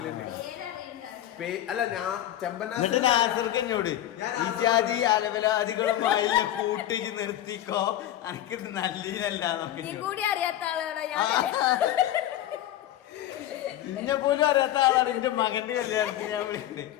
അല്ല ഞാൻ നാസർക്ക് എന്നോട് ഈ ജാതി അലവലാദികളും കൂട്ടിച്ച് നിർത്തിക്കോ, എനിക്കിത് നല്ലതല്ലാന്നൊക്കെ. നിന്നെ പോലും അറിയാത്ത ആളാണ് എന്റെ മകന്റെ കല്യാണത്തിന് ഞാൻ വിളിക്കുന്നത്.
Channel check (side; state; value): right; quieter; 12.6 dB